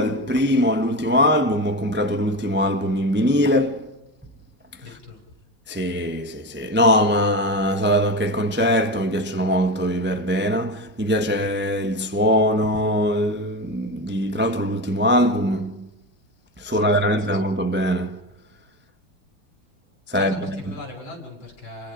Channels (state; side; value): normal; both; correlation 0.21